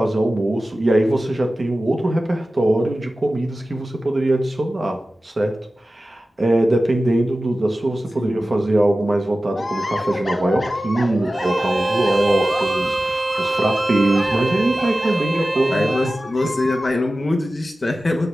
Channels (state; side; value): normal; both; correlation 0.95